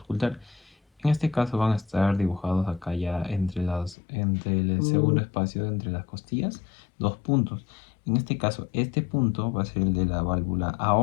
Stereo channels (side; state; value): right; drops out; at 4.0 s